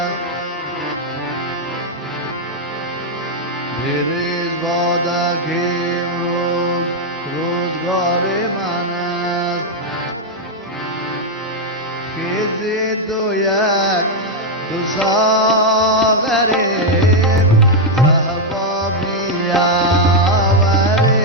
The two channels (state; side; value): normal; both; correlation 0.01